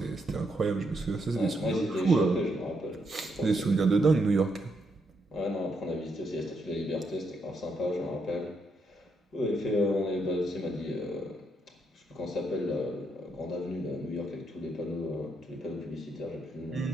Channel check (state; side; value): normal; both; correlation 0.78